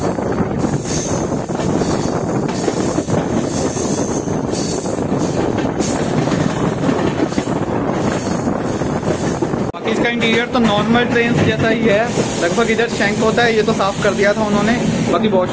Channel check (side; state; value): both; identical; correlation 1.00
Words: इसका इंटीरियर तो नॉर्मल ट्रेन जैसा ही है लगभग। इधर शैंक होता है, ये तो साफ कर दिया था उन्होंने। बाकी